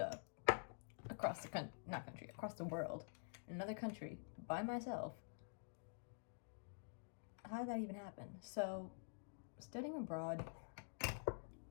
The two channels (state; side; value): silent; right; digital silence